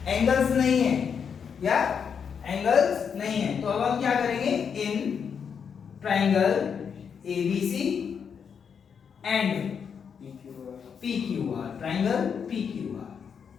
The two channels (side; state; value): right; quieter; 6.9 dB